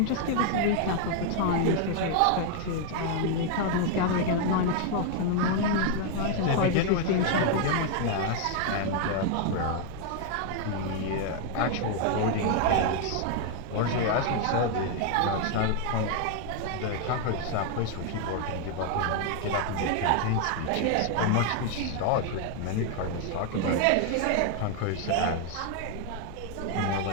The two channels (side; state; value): both; different; correlation 0.00